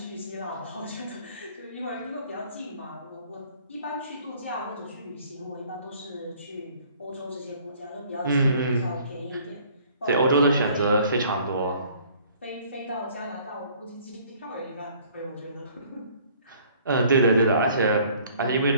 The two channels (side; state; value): both; inverted; correlation -0.56